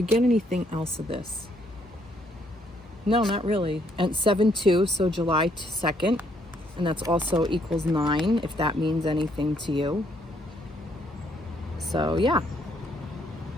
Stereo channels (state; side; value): normal; both; correlation 0.69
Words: get anything else of this? No, not really. And 7/2, so July 2nd. And that's also equals 9, if that means anything to you. So yeah.